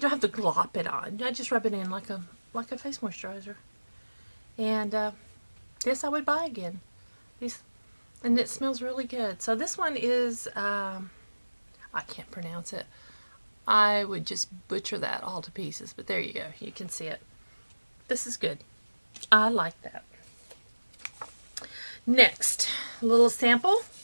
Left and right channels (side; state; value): both; inverted; correlation -1.00